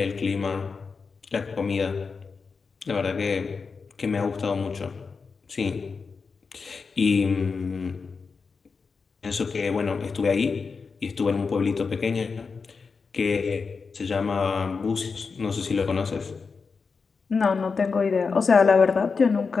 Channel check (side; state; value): right; quieter; 5.0 dB